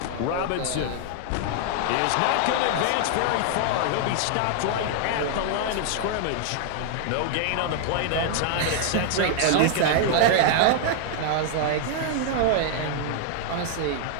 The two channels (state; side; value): different; both; correlation 0.00